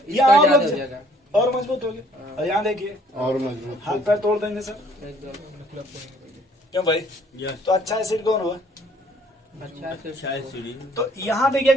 इसका और ज्यादा लोग हो जाएगा और मजबूत हो गए। और यहाँ देखिए और मजबूत। हाथ पैर तोड़ देंगे सर, एकदम। क्यों भाई, यस तो अच्छा एसिड कौन होगा, अच्छा से शायद सीढ़ी तो यहाँ देखिए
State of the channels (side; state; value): both; normal; correlation 0.60